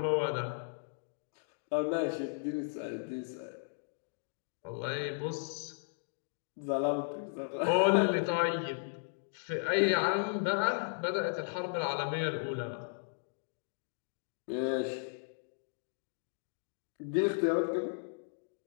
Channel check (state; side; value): silent; right; digital silence